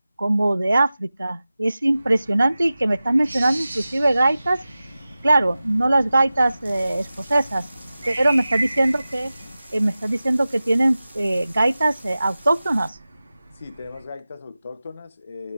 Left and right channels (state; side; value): inverted; both; correlation -0.96